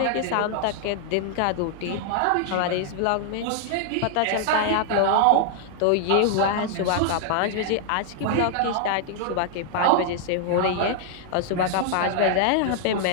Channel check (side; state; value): both; different; correlation -0.01